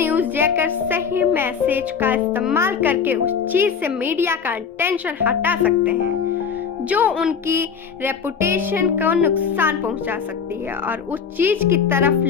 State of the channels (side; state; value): right; quieter; 6.5 dB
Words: जैकर सही मैसेज का इस्तेमाल करके उस चीज से मीडिया का अटेंशन हटा सकते हैं जो उनकी रेपुटेशन को नुकसान पहुंचा सकती है, और उस चीज की तरफ